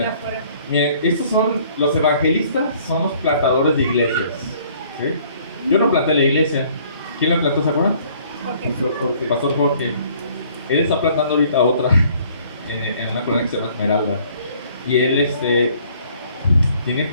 afuera. Miren, estos son los evangelistas, son los plantadores de iglesias. ¿Sí? Yo no planté la iglesia. ¿Quién la plantó, se acuerdan? Pastor Jorge. Él está plantando ahorita otra en una colonia que se llama Esmeralda. Y él tiene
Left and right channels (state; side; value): inverted; both; correlation -0.58